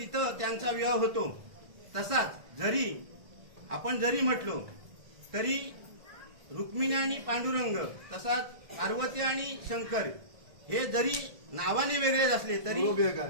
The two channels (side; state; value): left; late; 1.6 ms